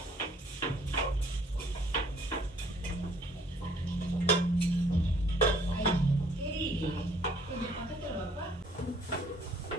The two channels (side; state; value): both; normal; correlation 0.60